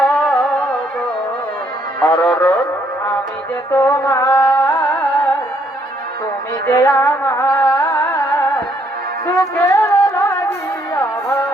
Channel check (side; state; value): both; normal; correlation 0.69